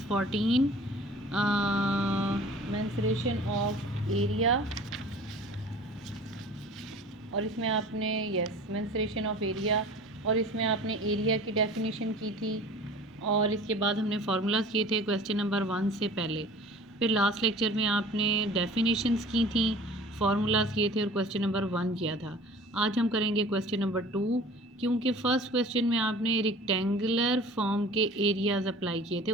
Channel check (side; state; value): both; normal; correlation 0.44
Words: 14 मेंसुरेशन ऑफ एरिया, और इसमें आपने मेंसुरेशन ऑफ एरिया, और इसमें आपने एरिया की डेफिनेशन की थी, और इसके बाद हमने फार्मूलाज किए थे क्वेश्चन नंबर 1 से पहले। फिर लास्ट लेक्चर में आपने डेफिनेशंस की थी, फार्मूलाज किए थे और क्वेश्चन नंबर 1 किया था। आज हम करेंगे क्वेश्चन नंबर 2, क्योंकि फर्स्ट क्वेश्चन में आपने रेक्टेंगुलर फॉर्म के एरियाज अप्लाई किए थे,